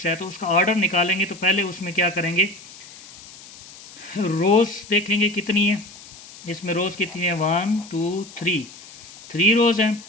है तो उसका ऑर्डर निकालेंगे तो पहले उसमें क्या करेंगे, रोज़ देखेंगे कितनी है। इसमें रोज़ कितनी है? 1 2 3 रोज़ हैं।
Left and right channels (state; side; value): noise; left; hiss, 18 dB below the sound